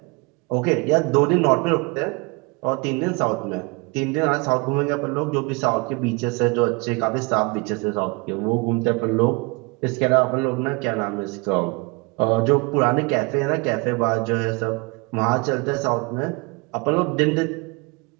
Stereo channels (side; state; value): left; quieter; 29.2 dB